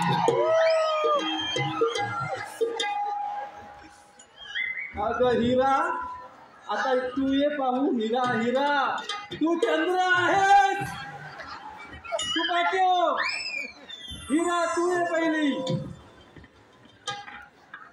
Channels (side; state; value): both; identical; correlation 1.00